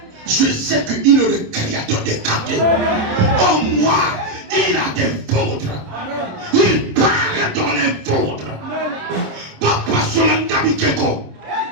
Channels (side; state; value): left; late; 27 ms